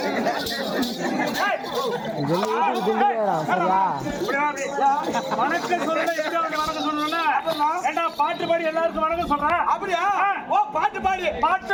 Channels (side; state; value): both; identical; correlation 1.00